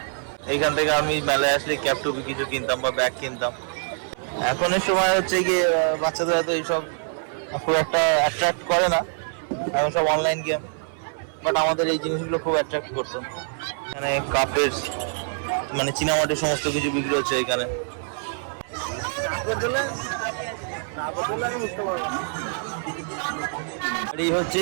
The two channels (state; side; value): silent; left; 58 dB below the other